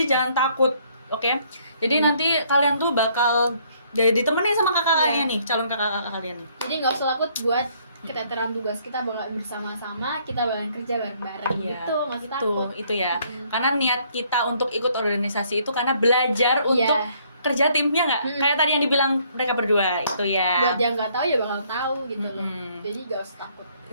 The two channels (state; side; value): inverted; both; correlation -0.65